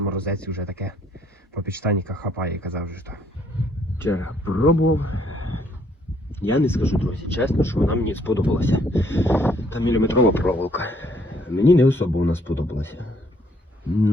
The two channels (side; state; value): both; normal; correlation 0.66